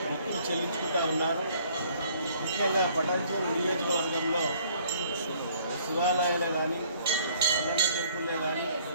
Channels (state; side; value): inverted; both; correlation -0.60